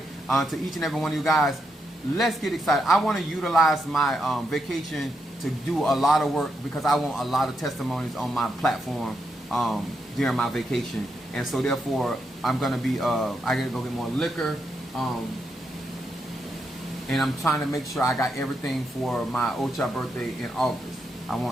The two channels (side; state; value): both; normal; correlation 0.82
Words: To each and every one of you guys, let's get excited. I want to utilize my vacation to do a lot of work, because I want a lot of testimonies on my platform during my vacation. And so therefore, I'm gonna be I gotta go get more liquor. And I'm trying to make sure I got everything for my Ocha birthday in August. I